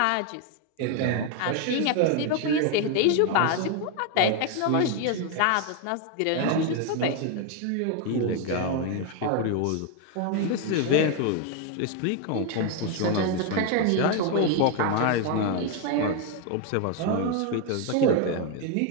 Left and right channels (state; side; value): different; both; correlation 0.01